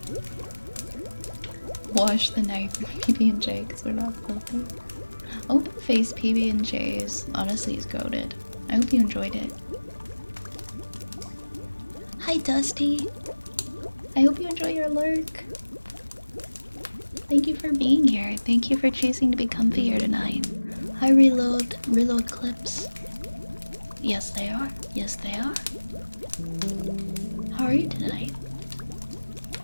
Wash the knife PB&J because we're not filthy. Open face PB&J's honestly is goated. I hope you enjoyed it. Hi, Dusty. I hope you enjoy your lurk. Thank you for being here. Thank you for choosing to be comfier tonight. Hi, reload clips. Yes, they are. Yes, they are. How are you tonight?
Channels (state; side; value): inverted; both; correlation -1.00